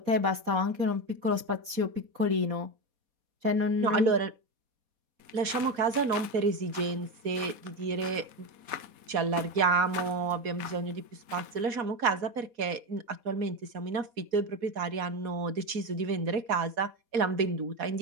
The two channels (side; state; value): left; late; 4.2 ms